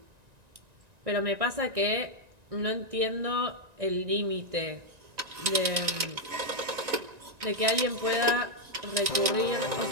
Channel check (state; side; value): late; left; 1.9 ms